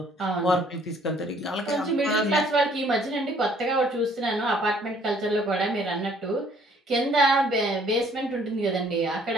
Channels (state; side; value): normal; both; correlation 0.60